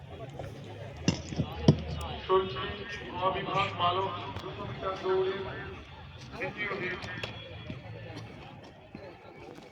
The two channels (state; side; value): identical; both; correlation 1.00